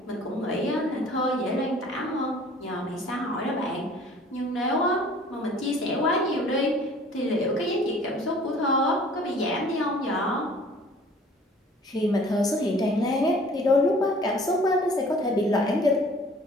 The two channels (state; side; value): normal; both; correlation 0.51